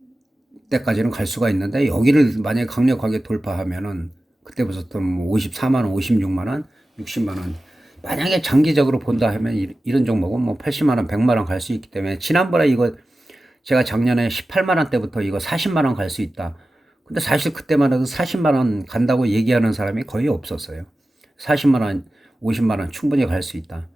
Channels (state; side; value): normal; both; correlation 0.95